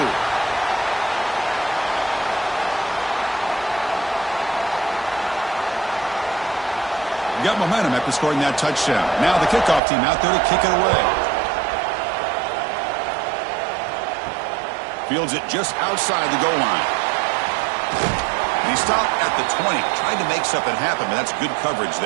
Got momentum after scoring that touchdown. Now the kickoff team out there to kick it away. Fields it just outside the goal line. He stopped at the 20. Tried to make something happen, but that's good coverage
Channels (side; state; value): left; drops out; at 9.8 s